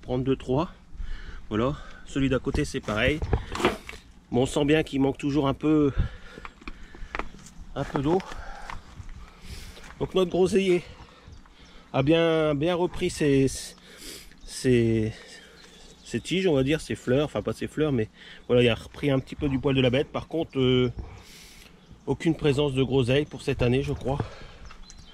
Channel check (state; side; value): identical; both; correlation 1.00